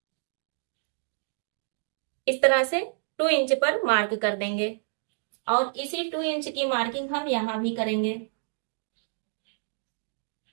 इस तरह से 2 इंच पर मार्क कर देंगे। और इसी 2 इंच की मार्किंग हम यहाँ भी करेंगे।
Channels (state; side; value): silent; left; digital silence